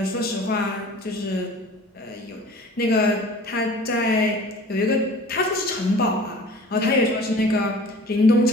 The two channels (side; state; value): both; normal; correlation 0.45